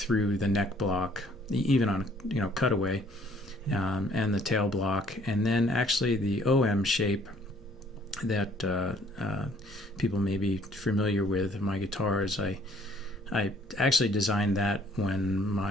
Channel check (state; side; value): normal; both; correlation 0.61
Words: the neck block, even on cutaway, and the tail block, and then actually the OM shape that people may be familiar with in my guitars. I actually designed that when